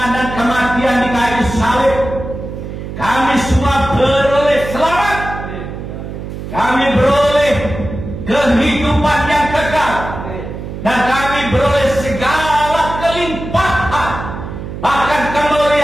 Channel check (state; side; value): noise; right; hum, 9 dB below the sound